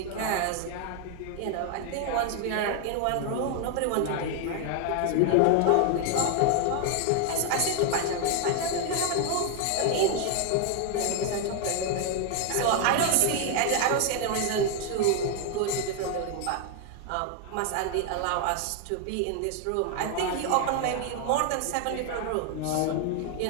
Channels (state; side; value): different; both; correlation 0.00